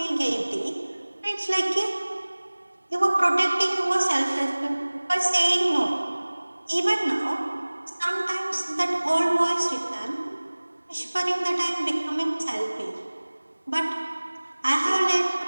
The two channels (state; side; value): inverted; both; correlation -1.00